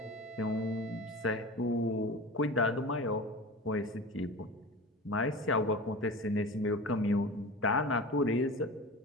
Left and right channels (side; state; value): both; normal; correlation 0.33